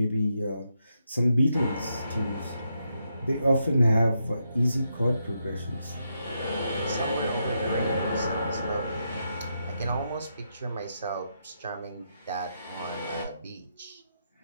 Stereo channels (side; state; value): both; inverted; correlation -0.82